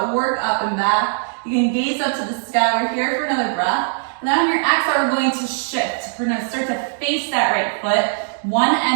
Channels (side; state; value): left; silent; digital silence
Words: work up and back. You can gaze up to the sky. We're here for another breath. And then on your exhale, we're going to shift. We're gonna start to face that right foot, one